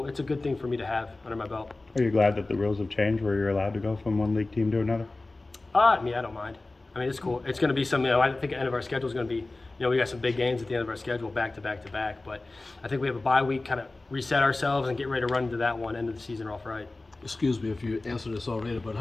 good thing for me to have under my belt. Are you glad that the rules have changed where you're allowed to go from one league team to another? I mean, I don't mind. I mean, it's cool. It's going to be something, you know, I think the end of our schedule is going to be, you know, we got some big games at the end of our schedule, back to back to back. But I think we have a bye week, kind of reset ourselves and get ready to run into that one, end of the season off right. Excuse me if you answered this already, but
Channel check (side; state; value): right; quieter; 3.1 dB